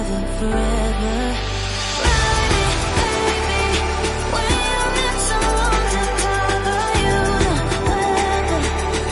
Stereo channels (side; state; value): both; identical; correlation 1.00